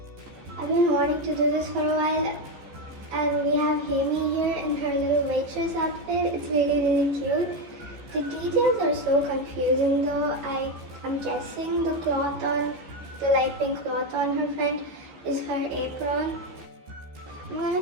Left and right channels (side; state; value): left; late; 14 ms